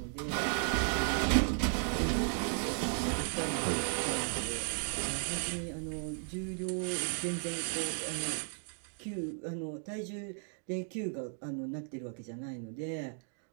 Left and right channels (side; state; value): left; silent; 54 dB below the other